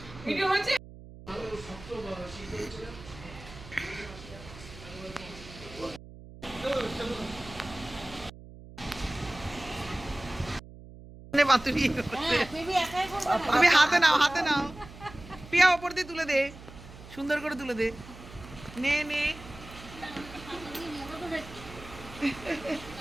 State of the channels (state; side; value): noise; right; hum, 17 dB below the sound